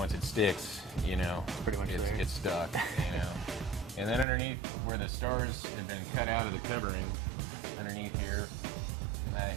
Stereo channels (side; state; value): left; drops out; at 4.2 s